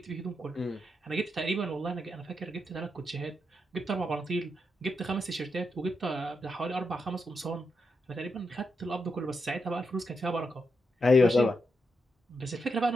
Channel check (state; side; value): normal; both; correlation 0.84